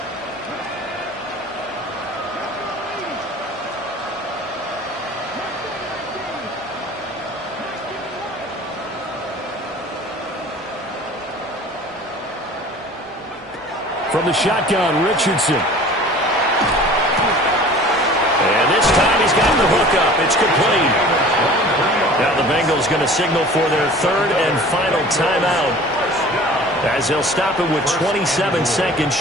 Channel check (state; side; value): normal; both; correlation 0.44